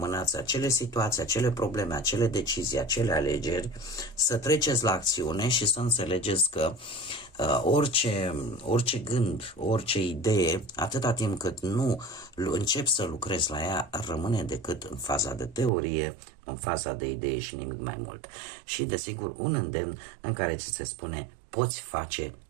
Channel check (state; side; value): drops out; left; at 15.7 s